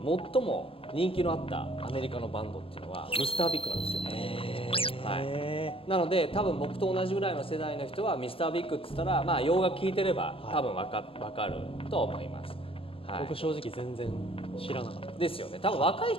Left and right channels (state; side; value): late; right; 0.27 ms